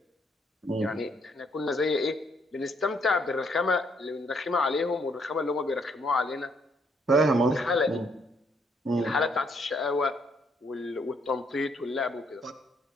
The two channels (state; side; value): normal; both; correlation 0.70